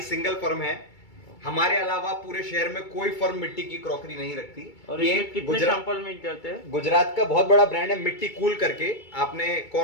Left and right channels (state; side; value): late; right; 2.3 ms